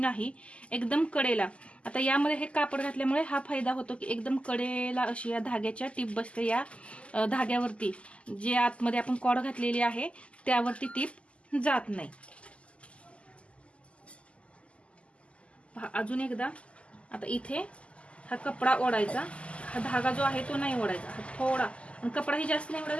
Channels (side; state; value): right; late; 0.057 ms